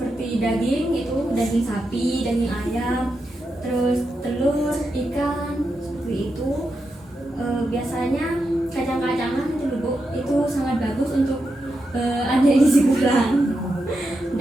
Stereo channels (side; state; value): both; normal; correlation 0.86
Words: daging, itu daging sapi, daging ayam, terus telur, ikan, seperti itu. Biasanya kacang-kacangan itu Bu, itu sangat bagus untuk adik gizi kurang.